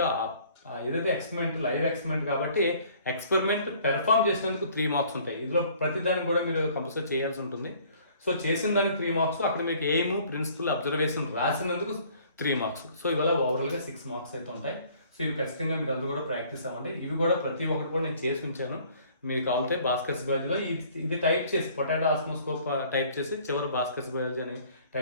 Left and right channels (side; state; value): both; inverted; correlation -0.56